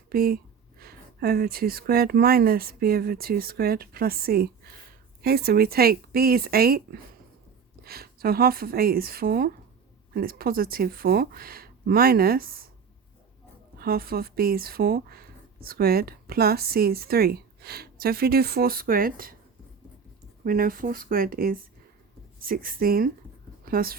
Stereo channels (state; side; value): quieter; left; 6.3 dB